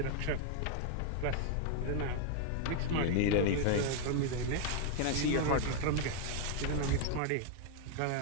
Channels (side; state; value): both; different; correlation 0.00